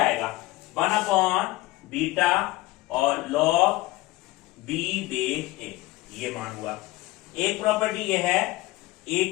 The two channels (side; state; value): right; quieter; 19.4 dB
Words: 1 बीटा और लॉग बी बेस ए, ये मान हुआ। एक प्रॉपर्टी ये है, ए